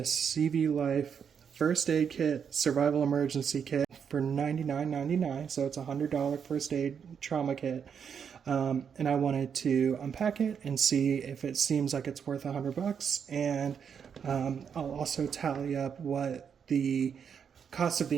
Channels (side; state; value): left; quieter; 7.2 dB